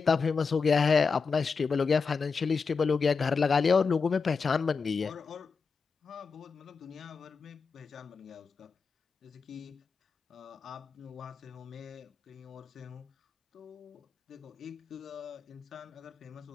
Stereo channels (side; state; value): right; quieter; 5.1 dB